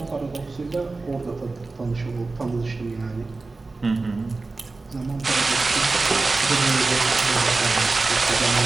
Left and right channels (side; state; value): left; quieter; 3.6 dB